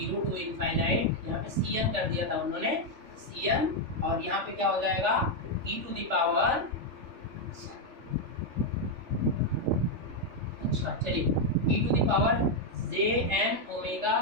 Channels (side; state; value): left; late; 3.4 ms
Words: to infinite, यहाँ पे cn कर दिया था उन्होंने, cn, और यहाँ पे क्या हो जाएगा e टू द पावर, अच्छा चलिए e to the power jn omega